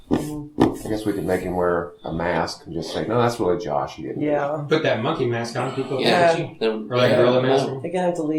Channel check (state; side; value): identical; both; correlation 1.00